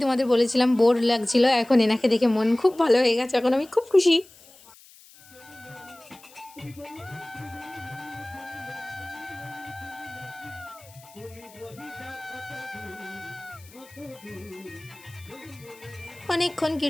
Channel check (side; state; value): left; noise; hiss, 23 dB below the sound